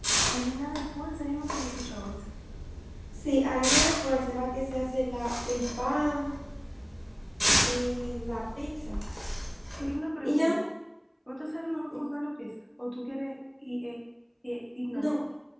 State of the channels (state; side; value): identical; both; correlation 1.00